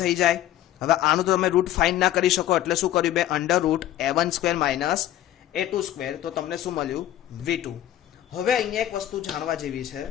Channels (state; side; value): quieter; right; 12.8 dB